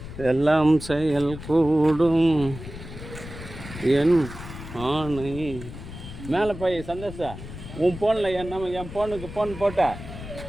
எல்லாம் செயல் கூடும் என் ஆணை. மேலே போய் சந்தோஷா உன் ஃபோனில் என் ஃபோனுக்கு ஃபோன் போட்ட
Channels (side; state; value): left; noise; rumble, 12 dB below the sound